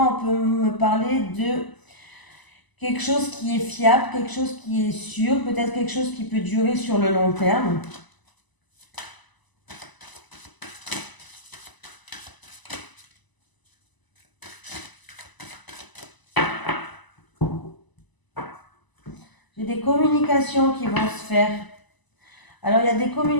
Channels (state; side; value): late; right; 1.0 ms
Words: peut me parler de quelque chose qui est fiable, quelque chose qui est sûr, peut-être quelque chose qui peut durer sur le long terme. J'ai des communications qui vont se faire. Alors, il y a des